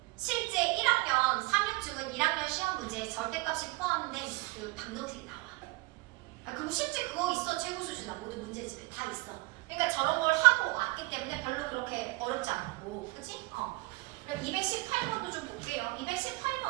실제 1학년 3육중은 1학년 시험 문제에 절대값이 포함된 그 방정식이 나와. 그럼 실제 그거 있어. 최고 수준아 모든 문제집에 다 있어. 그러니까 저런 걸 하고 왔기 때문에 별로 그렇게 어렵지 않고, 그치? 그럼 218번도 좀 볼게요.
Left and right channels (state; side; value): quieter; left; 22.9 dB